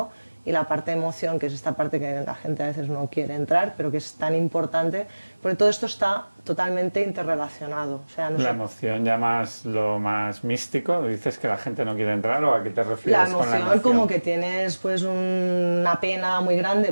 Y la parte de emoción, que es esta parte que la gente a veces no quiere entrar, pero que es tan importante, porque todo esto está totalmente interrelacionado. O sea, la emoción ya lo más místico, ¿dices que la gente no quiere entrar o a qué te refieres con la emoción? Como que tienes pues, una pena muy grande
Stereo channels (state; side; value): inverted; both; correlation -1.00